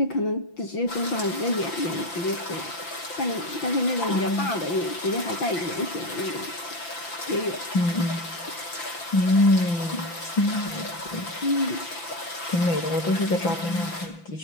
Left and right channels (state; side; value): late; right; 5.9 ms